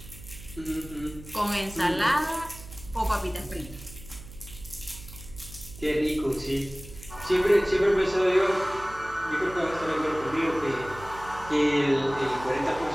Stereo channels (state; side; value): noise; right; hum, 16 dB below the sound